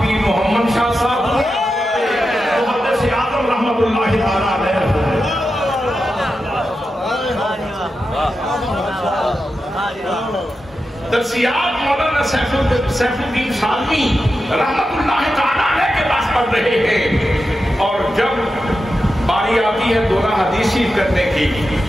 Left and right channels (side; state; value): both; normal; correlation 0.90